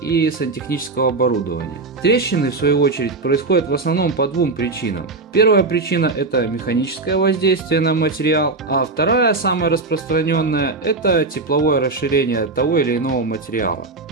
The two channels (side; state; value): left; quieter; 3.6 dB